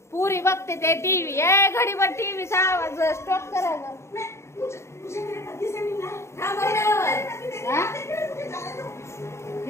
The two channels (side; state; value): right; late; 0.13 ms